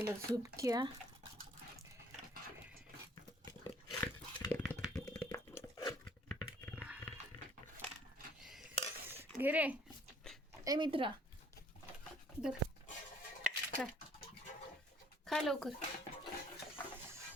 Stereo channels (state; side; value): normal; both; correlation 0.58